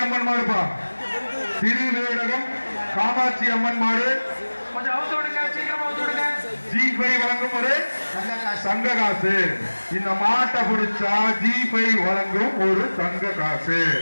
அம்மன் மாடுப்பா. திருவேடகம் காமாட்சி அம்மன் மாடு. கொஞ்சம் அவுத்து விடுங்க சீக்கிரமா அவுத்து விடுங்க. G5 வழங்கும் ஒரு தங்க காசு. இந்த மாட்டை பிடிச்சா G5 வழங்கும் ஒரு தங்க காசு.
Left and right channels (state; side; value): inverted; both; correlation -1.00